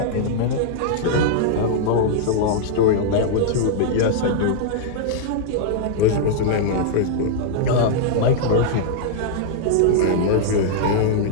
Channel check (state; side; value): different; both; correlation -0.01